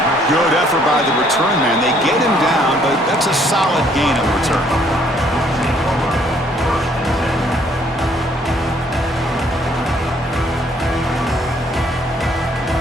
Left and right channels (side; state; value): both; normal; correlation 0.64